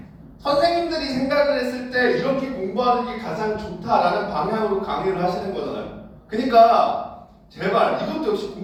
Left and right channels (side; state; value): both; identical; correlation 1.00